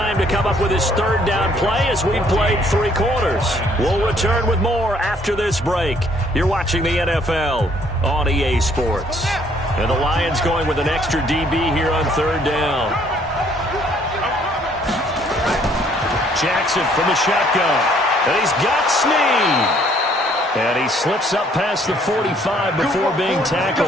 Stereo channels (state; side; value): normal; both; correlation 0.63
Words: to come up with his 3rd down play as we've played 3 quarters. We'll return with more after this break. You're watching the NFL on EA Sports. And the Lions going with an extra DB here on 3rd down. Jackson from the shotgun. And he's got Snead. And he slips up past the 45 before being